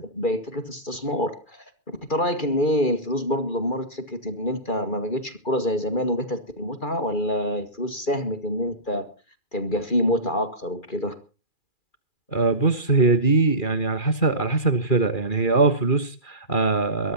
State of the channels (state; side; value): late; right; 2.4 ms